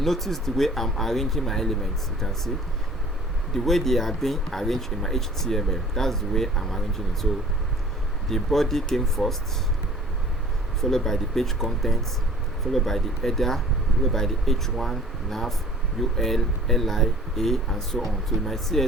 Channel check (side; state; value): both; normal; correlation 0.49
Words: the way I'm arranging my elements. You can see the way they are being arranged in my HTML. That's the way I'm arranging it. So the body came first, followed by the page contents, followed by the header, followed by the H1, nav, UL, LI, A, and so on. So in my